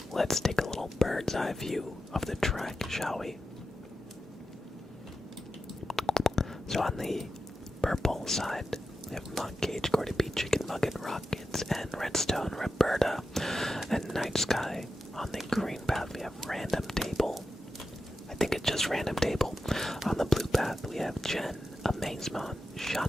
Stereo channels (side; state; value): both; normal; correlation 0.90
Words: let's take a little bird's eye view of the track, shall we? So on the purple side, we have Monk Cage, Gordy B, Chicken Nugget, Rockets, and Redstone, Roberta, and Night Sky. On the green path, we have Random Table. I think it's just Random Table. On the blue path, we have Jen, Amazemon,